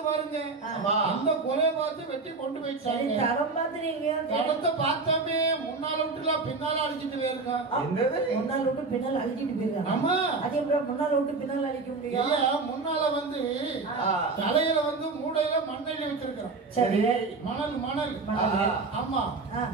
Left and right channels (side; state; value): left; quieter; 4.0 dB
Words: பாருங்க. அந்த கொலையை பார்த்து வெட்டி கொண்டு போயிட்டாங்க. தடம் பாத்துறீங்க? தடத்தை பார்த்தாமே முன்னால விட்டுல பின்னால அழிச்சிட்டு போயிருங்க. முன்னால விட்டு பின்னால் அழிச்சிட்டு போயிருக்காங்க. ஆமா. அதே முன்னால விட்டு பின்னால் அழிக்க முடியும். முன்னால வந்து தலையில வந்து மூடையில மண்ணெண்ணி வச்சிருக்கான். சரி. மணல் மணல். ஆமா.